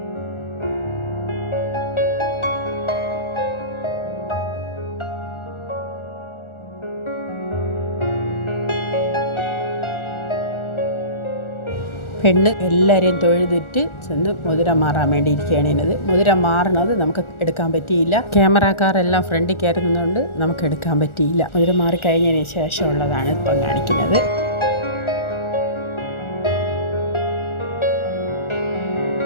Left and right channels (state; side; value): late; right; 1.4 ms